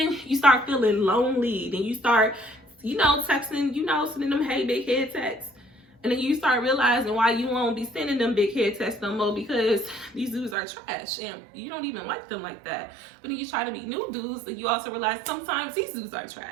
you start feeling lonely. Then you start, you know, texting, you know, sending them hey big head texts. And then you start realizing why you won't be sending them big head texts no more, because these dudes are trash and you don't even like them like that. But then you try to meet new dudes and you also realize sometimes these dudes are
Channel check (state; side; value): drops out; left; at 10.6 s